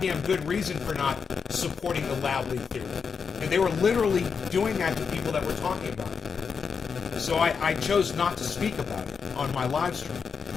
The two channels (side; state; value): right; quieter; 5.9 dB